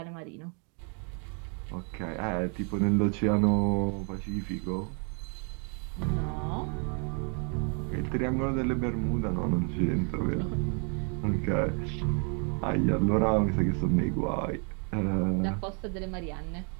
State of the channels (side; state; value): left; quieter; 38.8 dB